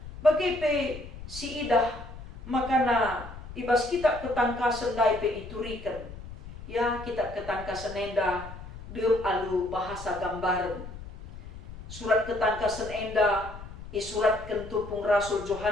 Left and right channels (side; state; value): left; noise; rumble, 13 dB below the sound